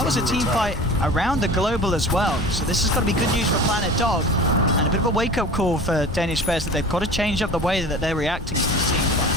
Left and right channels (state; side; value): normal; both; correlation 0.38